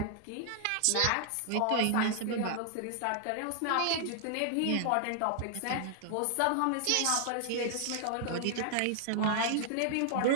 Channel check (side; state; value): both; different; correlation 0.00